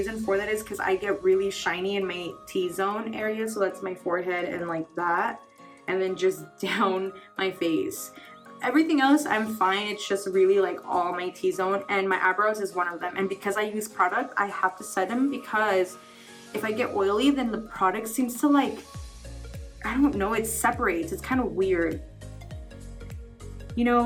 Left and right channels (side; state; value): both; identical; correlation 1.00